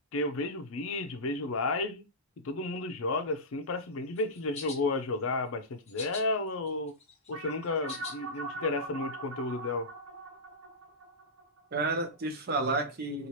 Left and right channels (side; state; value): both; normal; correlation -0.13